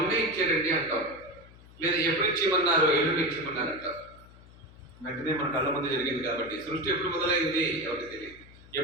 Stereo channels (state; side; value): noise; left; hum, 22 dB below the sound